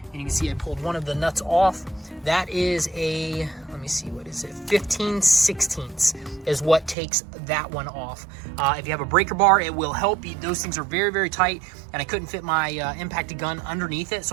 And you can see I pulled one of the nuts off. That is a, let me see, what is it? 15/16 is what takes that one off. If you have a breaker bar, it will help you. Those things are very, very tight, and I couldn't fit my impacted gun underneath it,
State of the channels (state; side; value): drops out; left; at 7.0 s